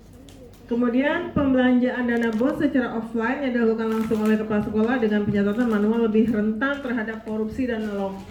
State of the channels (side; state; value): both; identical; correlation 1.00